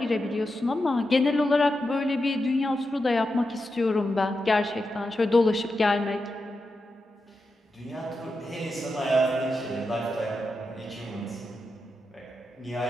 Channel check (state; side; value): normal; both; correlation 0.88